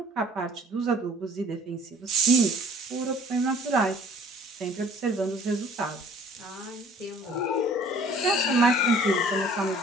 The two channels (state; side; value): normal; both; correlation 0.53